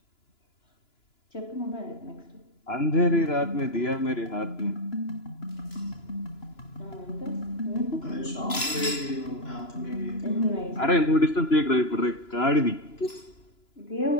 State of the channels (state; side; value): late; right; 2.9 ms